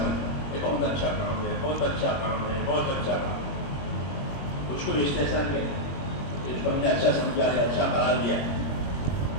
یہ بہت اچھا کام ہے، بہت اچھا کام ہے، بہت اچھا کام ہے، اس کو استحسان کہتے ہیں۔ اس کو ہم نے اچھا سمجھا ہے، اچھا قرار دیا،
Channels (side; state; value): right; late; 21 ms